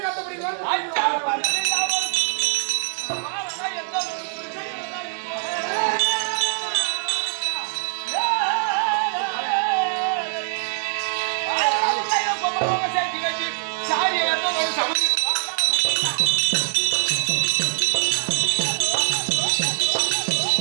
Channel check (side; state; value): left; silent; 61 dB below the other